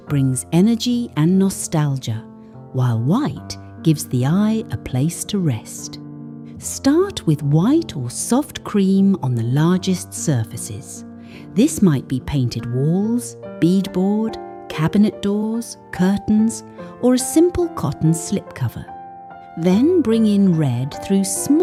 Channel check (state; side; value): identical; both; correlation 1.00